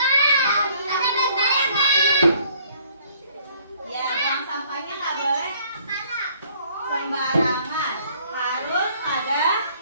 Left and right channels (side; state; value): both; inverted; correlation -0.60